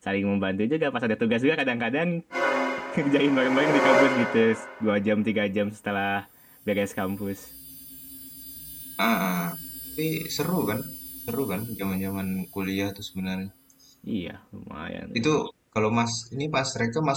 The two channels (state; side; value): identical; both; correlation 1.00